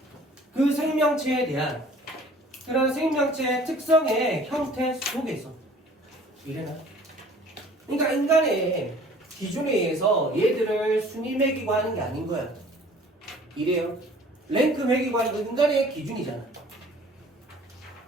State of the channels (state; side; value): normal; both; correlation 0.51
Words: 그 생명체에 대한 그런 생명체의 특성의 형태 속에서 이래나? 그러니까 인간의 기준에 의해서 얘들을 순위 매기고 하는 게 아닌 거야. 이래요. 랭크 매기고 하는 건 인간의 기준이잖아.